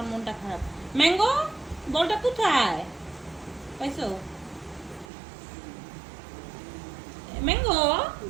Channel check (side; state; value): left; drops out; at 5.1 s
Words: মনটা খারাপ। ম্যাঙ্গো, বলটা কোথায় পাইছো? ম্যাঙ্গো,